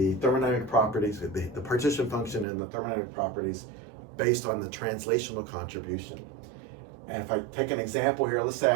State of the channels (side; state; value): left; drops out; at 2.5 s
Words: thermodynamic properties, the partition function and the thermodynamic properties based on the translational contribution. And if I take an example here, let's say